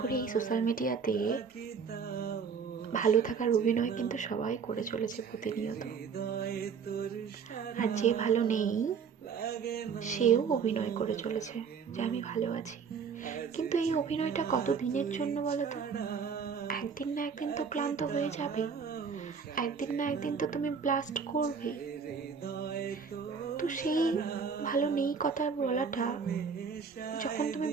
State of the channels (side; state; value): left; quieter; 6.0 dB